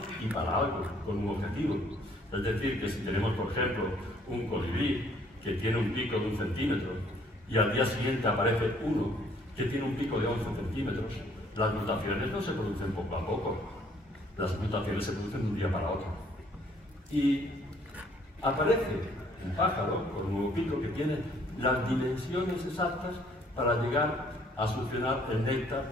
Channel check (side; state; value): both; normal; correlation 0.62